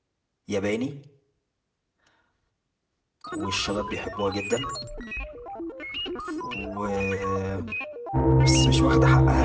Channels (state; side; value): identical; both; correlation 1.00